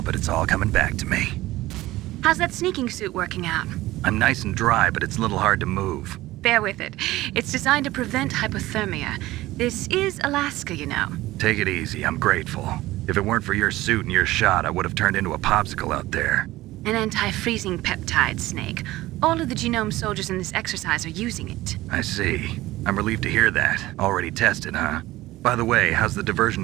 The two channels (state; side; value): quieter; left; 17.3 dB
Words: but it's all coming back to me. How's that sneaking suit working out? I'm nice and dry, but it's a little hard to move. Bear with it. It's designed to prevent hypothermia. This is Alaska, you know. Take it easy. I'm grateful. If it weren't for your suit and your shot, I would have turned into a popsicle out there. An anti-freezing peptide, Snake. All of the genome soldiers in this exercise are using it. I see. I'm relieved to hear that. Already tested, huh? By the way, how's the